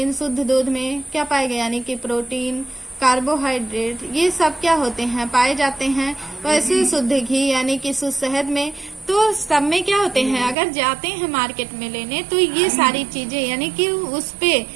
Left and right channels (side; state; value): left; drops out; at 10.6 s